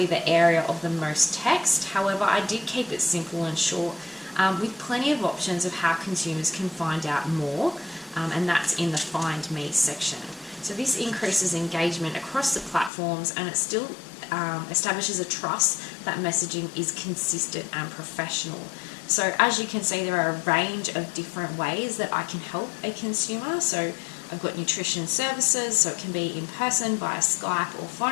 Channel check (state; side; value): drops out; right; at 12.9 s